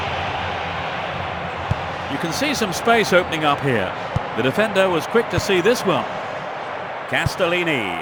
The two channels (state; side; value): identical; both; correlation 1.00